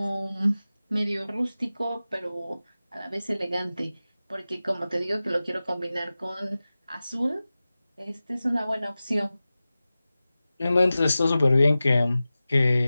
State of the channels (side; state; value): both; inverted; correlation -0.96